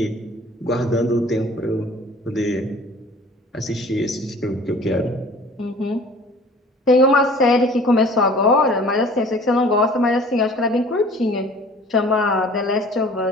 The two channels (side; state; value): both; normal; correlation 0.48